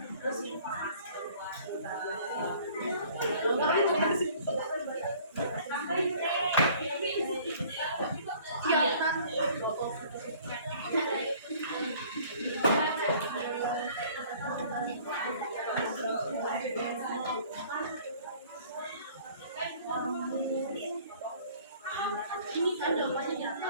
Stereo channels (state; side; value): inverted; both; correlation -0.53